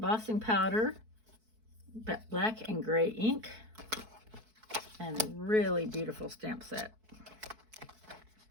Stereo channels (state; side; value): late; left; 4.6 ms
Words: powder, black and gray ink, and a really beautiful stamp set.